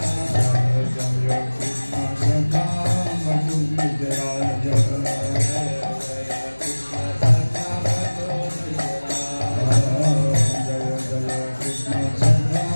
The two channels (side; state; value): both; inverted; correlation -1.00